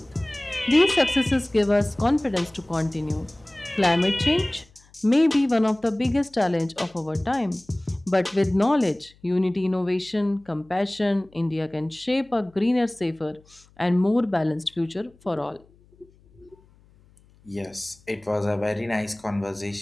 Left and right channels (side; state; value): left; noise; hum, 29 dB below the sound